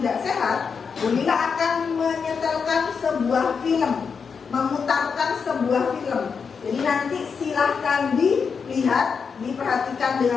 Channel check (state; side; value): quieter; right; 5.9 dB